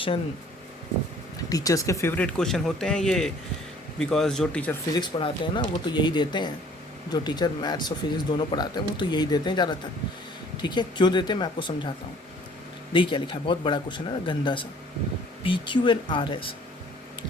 टीचर्स के फेवरेट क्वेश्चन होते हैं ये, बिकॉज जो टीचर फिज़िक्स पढ़ाते हैं ना वो तो यही देते हैं, जो टीचर मैथ्स और फिज़िक्स दोनों पढ़ाते हैं वो तो यही देते हैं ज़्यादातर, ठीक है। क्यों देते हैं मैं आपको समझाता हूँ। देखिए क्या लिखा है, बहुत बड़ा क्वेश्चन है ना, गंदा सा। P Q and R S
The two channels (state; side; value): normal; both; correlation 0.55